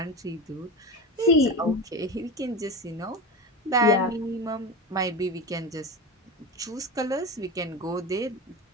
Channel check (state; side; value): normal; both; correlation 0.23